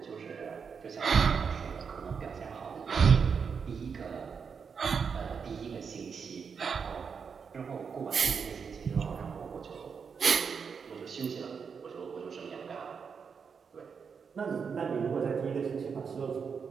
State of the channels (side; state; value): left; quieter; 6.1 dB